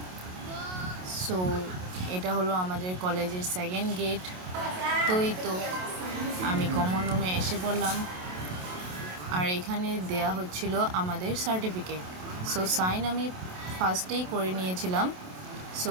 সো এটা হলো আমাদের কলেজের সেকেন্ড গেট। তো এই তো আমি কমন রুমে এসে পড়লাম, আর এখানে দেয়া হচ্ছিল আমাদের সার্টিফিকেট। সো সাইন আমি ফার্স্টেই করে নিয়েছিলাম।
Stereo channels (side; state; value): left; late; 27 ms